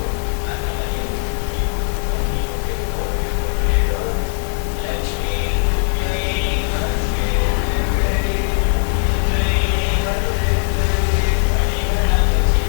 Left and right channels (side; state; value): right; silent; 56 dB below the other